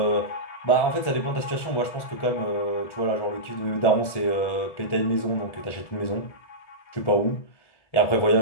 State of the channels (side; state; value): right; late; 1.7 ms